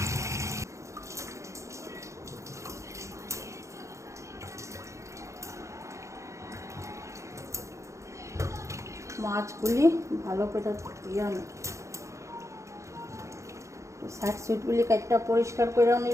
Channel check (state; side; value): late; left; 0.15 ms